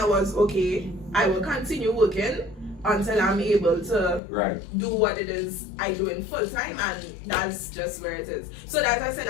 was, okay, I will continue working until I'm able to do what it is I do in full time, and that's just where it is. So that's why I said,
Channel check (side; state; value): right; drops out; at 4.2 s